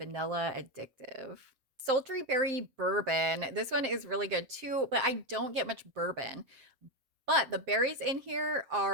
addictive. Sultry berry bourbon. This one is really good too, but I don't get much bourbon. But the berries in here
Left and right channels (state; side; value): late; left; 7.6 ms